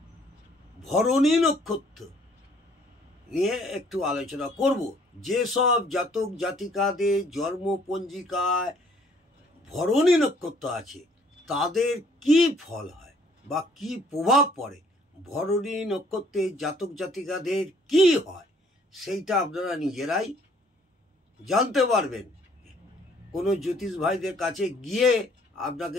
ভরণী নক্ষত্র নিয়ে একটু আলোচনা করব। যেসব জাতক জাতিকাদের জন্ম পঞ্জিকায় ভরণী নক্ষত্র আছে তাদের কি ফল হয় বা কি প্রভাব পড়ে, ভরণী নক্ষত্রের জাতক জাতিকাদের কি হয় সেইটা আপনারা নিজেরাই জানতে পারবেন। কোনো জ্যোতিষ ভাইদের কাছে গিয়ে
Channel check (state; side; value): normal; both; correlation 0.61